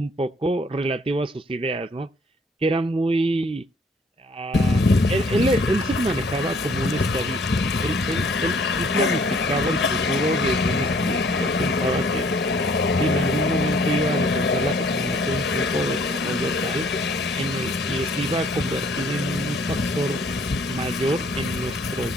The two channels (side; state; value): both; normal; correlation 0.60